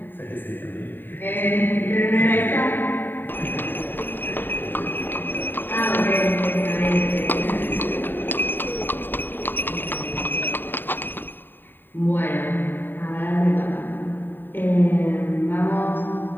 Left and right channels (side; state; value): right; late; 0.093 ms